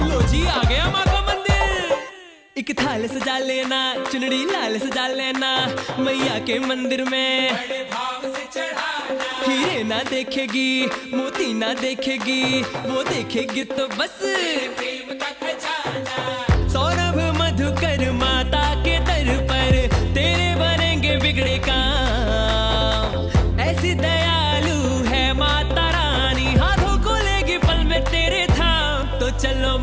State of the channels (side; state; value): both; identical; correlation 1.00